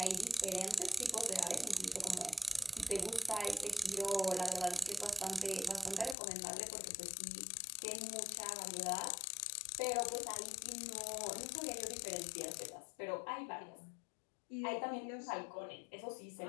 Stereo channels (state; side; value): drops out; right; at 6.2 s